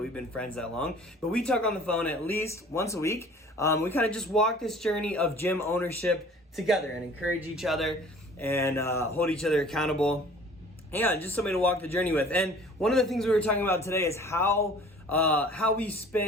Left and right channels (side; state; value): both; normal; correlation 0.49